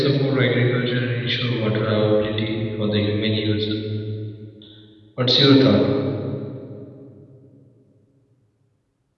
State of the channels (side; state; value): both; identical; correlation 1.00